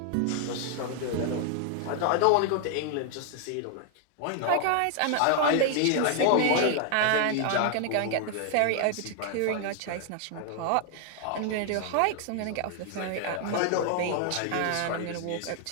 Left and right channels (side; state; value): both; different; correlation 0.00